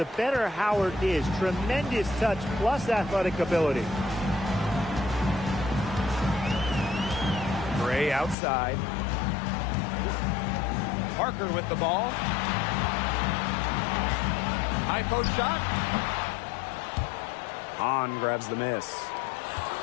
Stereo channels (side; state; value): right; drops out; at 8.3 s